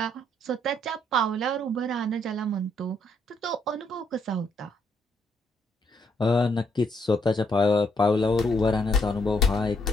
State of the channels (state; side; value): normal; both; correlation 0.72